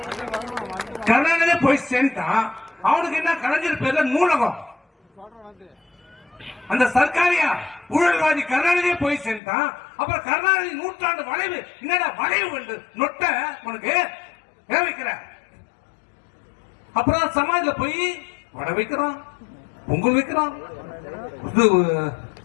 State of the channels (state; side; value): drops out; right; at 9.4 s